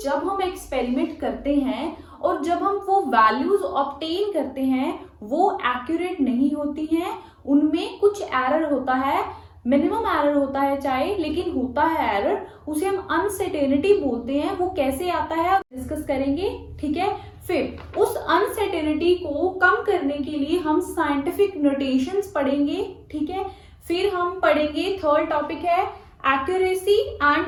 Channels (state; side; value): identical; both; correlation 1.00